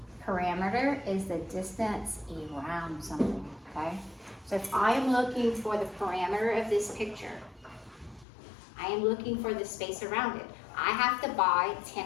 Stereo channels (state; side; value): drops out; right; at 8.2 s